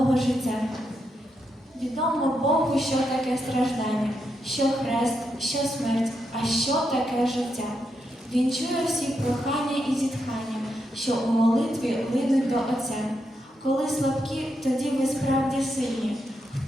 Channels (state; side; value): normal; both; correlation 0.83